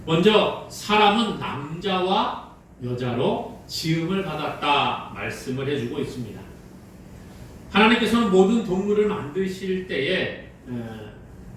먼저 사람은 남자와 여자로 지음을 받았다 말씀을 해주고 있습니다. 하나님께서는 모든 동물을 만드실 때에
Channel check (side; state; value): both; identical; correlation 1.00